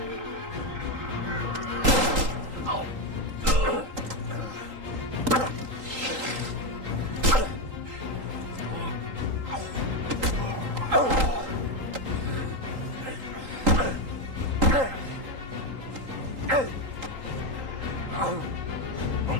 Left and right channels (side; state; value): left; late; 3.8 ms